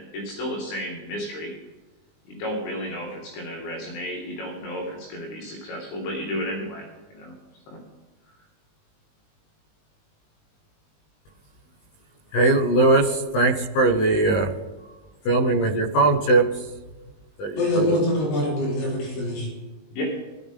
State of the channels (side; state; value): right; late; 20 ms